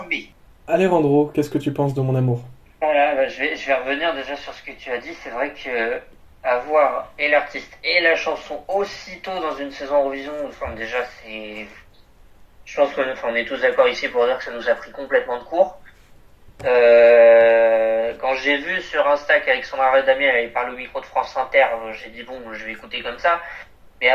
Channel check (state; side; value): identical; both; correlation 1.00